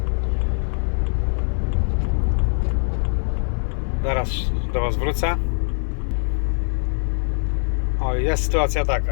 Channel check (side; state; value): right; silent; 57 dB below the other